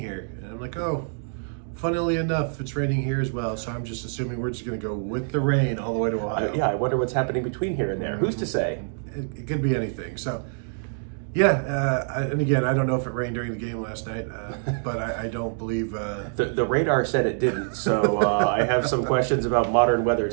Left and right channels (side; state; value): left; silent; digital silence